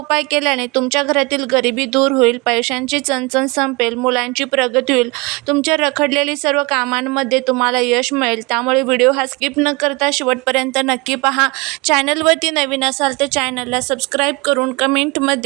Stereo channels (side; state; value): left; quieter; 26.6 dB